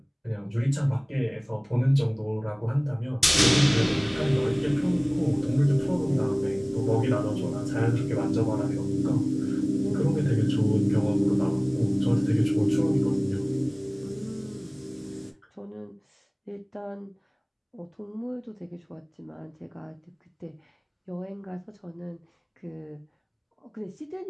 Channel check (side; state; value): both; identical; correlation 1.00